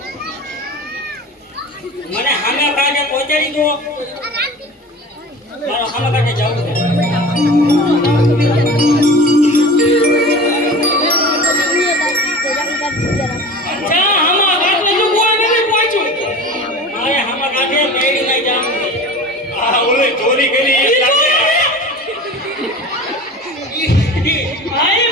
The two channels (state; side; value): normal; both; correlation 0.36